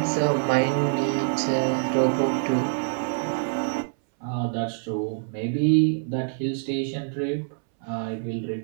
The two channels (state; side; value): silent; left; 61 dB below the other